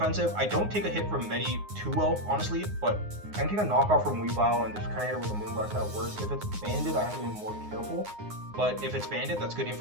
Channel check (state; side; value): late; left; 9.6 ms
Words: I don't take a hit from Medi too well, honestly, but I can take a knockoff from Weavile and just kind of hit it with a Moonblast that works. If it's banded, I have to be more careful. But if it's banded, that's good